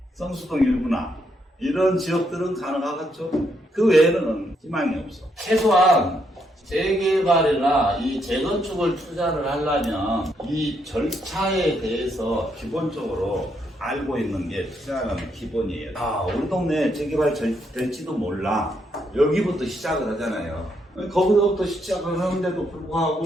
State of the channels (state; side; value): normal; both; correlation 0.76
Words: 성수동 일부나 이런 지역들은 가능하겠죠. 그 외에는 희망이 없어. 최소한 재개발이나 이 재건축을 투자를 하려면 이 절차에 대해서 기본적으로 알고 있는 게 투자하는 기본이에요. 우리 동네에 재개발 될지도 몰라. 여기부터 시작을 하잖아요. 거기서부터 시작을 하는데도 불구하고